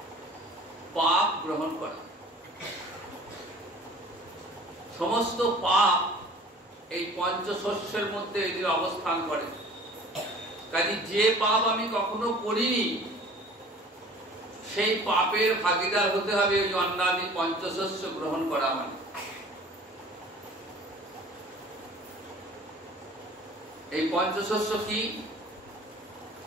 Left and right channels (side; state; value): both; normal; correlation 0.47